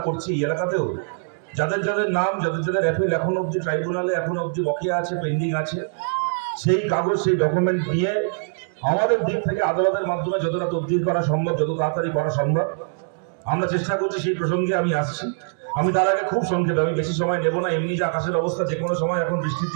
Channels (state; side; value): silent; left; digital silence